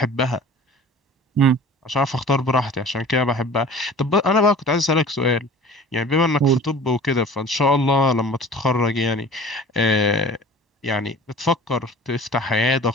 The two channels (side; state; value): both; normal; correlation 0.43